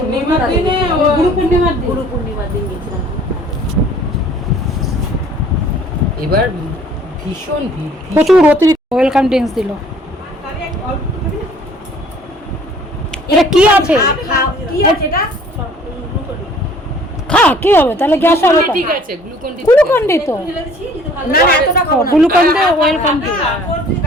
পূর্ণিমার দিনে, গুরু পূর্ণিমার দিন গেছিলাম। এবার ভীষণ ভিড়, প্রচুর অতিরিক্ত ওয়েলকাম ড্রিঙ্কস দিল। এটা কি আছে? খা, কি হবে তাহলে, গ্যাস হবে? ঠিক আছে, গ্লুকন ডি তো না না, এতটা খাও না। Glucon D welcome D.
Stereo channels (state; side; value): normal; both; correlation 0.54